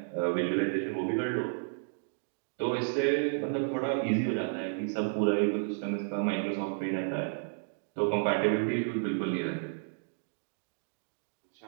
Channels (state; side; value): silent; left; digital silence